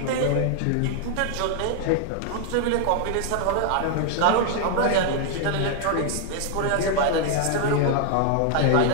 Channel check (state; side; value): different; both; correlation 0.00